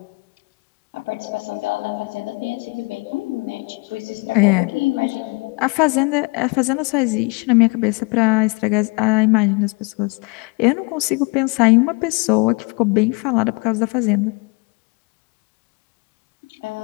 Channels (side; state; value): right; quieter; 28.8 dB